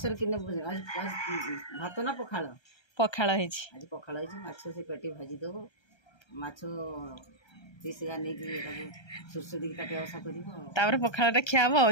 कि भात ना पखाड़ पखाड़ आज पखाड़ माछ से पेटी भाजी देव माछ पीस नहीं सुरस दी काटे आशा कर पखाड़ा खिया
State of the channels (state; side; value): late; right; 1.3 ms